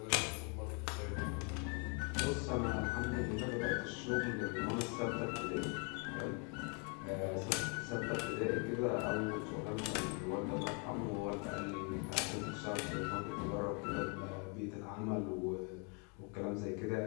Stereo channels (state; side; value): quieter; right; 36.2 dB